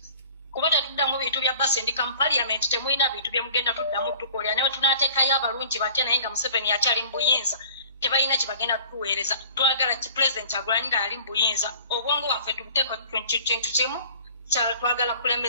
kuba tetuddamu bintu bya basendika mu parliament temulina bintu bye mugenda tuddamu tukolera newe tunateekayo abalungi batya naye nga Museveni akyali mu buyinza tebalina kye bagenda tuweereza twagala ki president Kyagulanyi nga ali mu buyinza obwongo waffe tubuteeka kintu kimu twagala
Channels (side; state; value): both; inverted; correlation -0.47